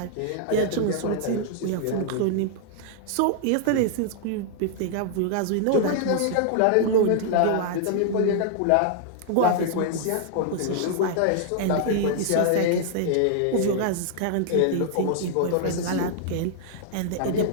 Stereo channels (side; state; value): both; different; correlation -0.01